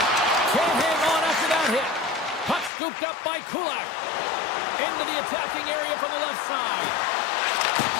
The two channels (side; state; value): right; drops out; at 2.7 s